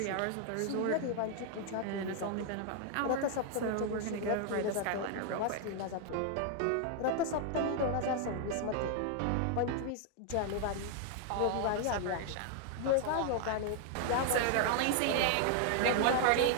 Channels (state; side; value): different; both; correlation 0.00